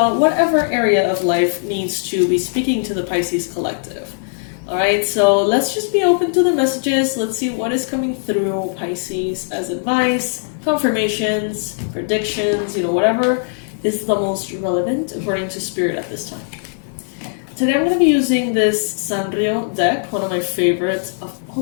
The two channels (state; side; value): silent; right; digital silence